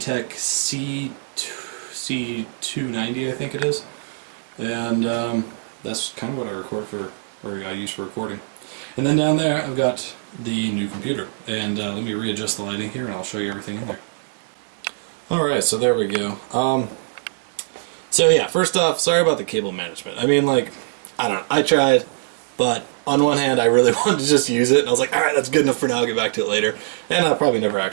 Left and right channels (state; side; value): silent; left; digital silence